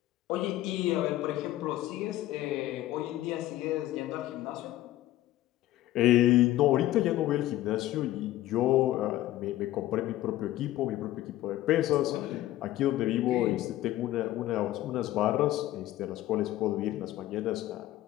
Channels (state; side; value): quieter; right; 14.9 dB